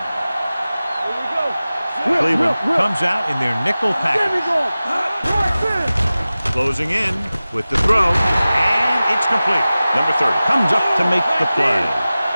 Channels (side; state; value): both; inverted; correlation -0.97